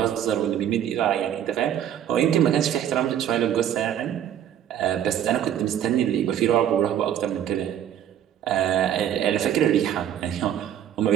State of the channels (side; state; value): left; quieter; 10.3 dB